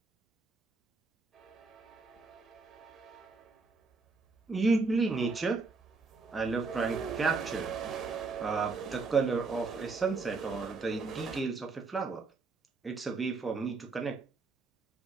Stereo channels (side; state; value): left; quieter; 4.2 dB